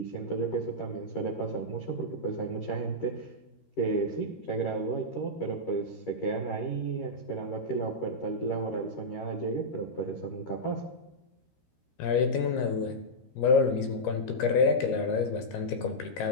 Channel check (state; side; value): late; right; 13 ms